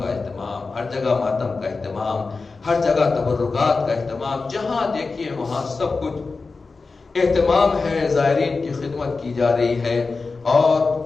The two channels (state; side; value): quieter; right; 4.1 dB